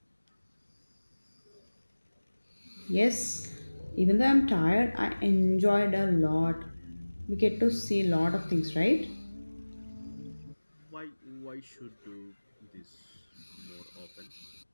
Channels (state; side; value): inverted; both; correlation -1.00